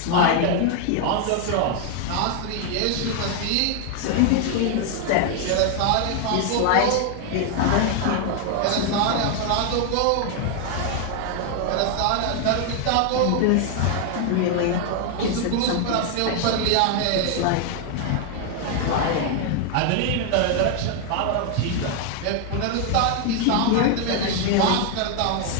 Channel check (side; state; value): both; different; correlation 0.00